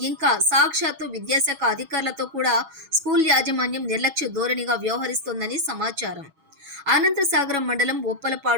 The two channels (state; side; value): late; left; 6.2 ms